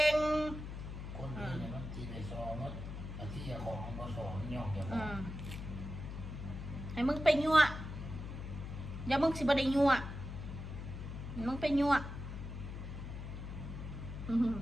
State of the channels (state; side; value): noise; left; hum, 8 dB below the sound